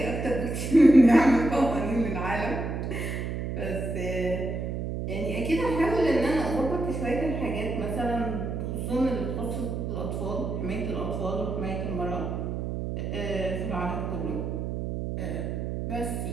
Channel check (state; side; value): noise; right; hum, 3 dB below the sound